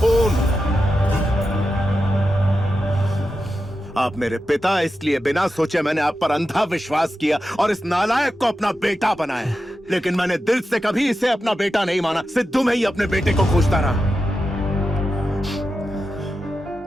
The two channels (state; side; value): normal; both; correlation 0.90